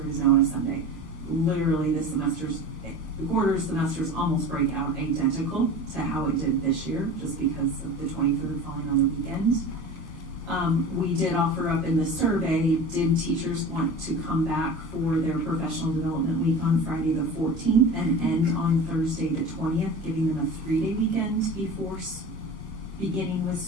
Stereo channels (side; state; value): both; normal; correlation 0.33